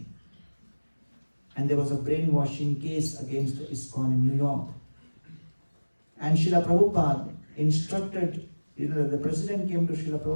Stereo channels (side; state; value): both; inverted; correlation -1.00